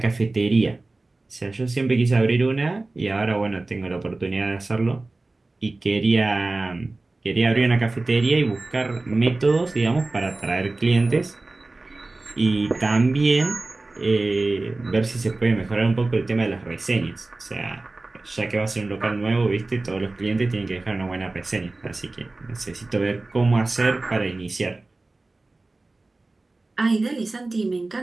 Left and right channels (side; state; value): left; quieter; 3.2 dB